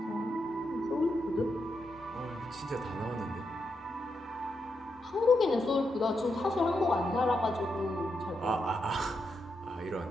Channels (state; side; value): normal; both; correlation 0.83